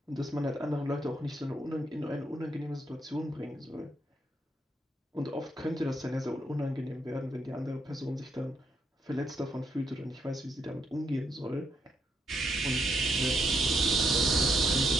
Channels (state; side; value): normal; both; correlation 0.77